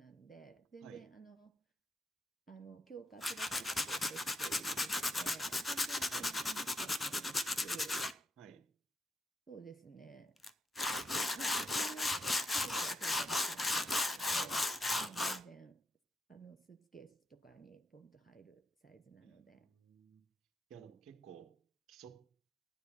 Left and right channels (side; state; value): both; normal; correlation 0.81